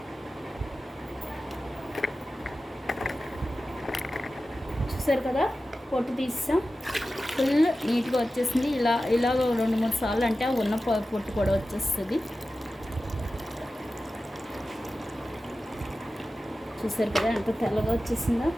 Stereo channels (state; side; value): normal; both; correlation 0.94